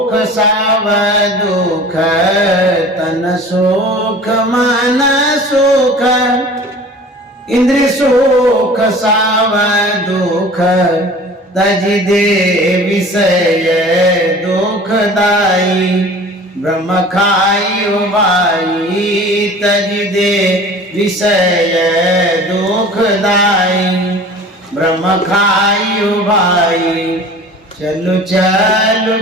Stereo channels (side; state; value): both; normal; correlation 0.43